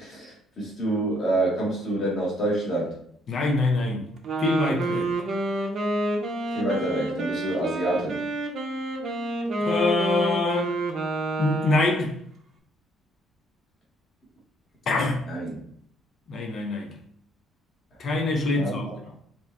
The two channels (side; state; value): both; normal; correlation 0.68